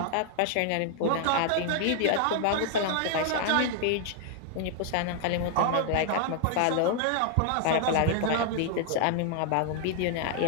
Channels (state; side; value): different; both; correlation 0.00